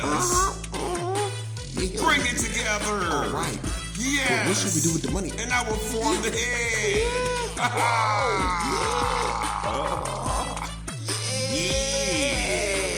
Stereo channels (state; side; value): identical; both; correlation 1.00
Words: Bring it together. All right. Yes. What should we do with the money? And I will form the head.